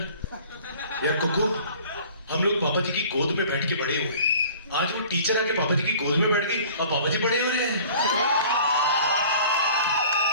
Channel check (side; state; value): both; inverted; correlation -0.48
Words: यार. कुकू, हम लोग पापा जी की गोद में बैठ के बड़े हुए, आज वो टीचर आके पापा जी की गोद में बैठ गई और पापा जी बड़े हो रहे हैं.